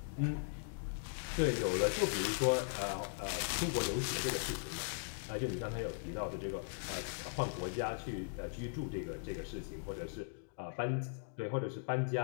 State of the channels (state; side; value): silent; right; digital silence